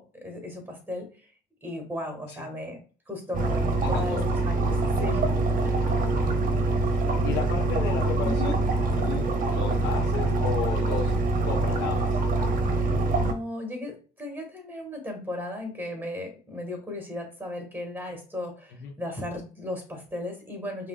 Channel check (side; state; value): both; normal; correlation 0.59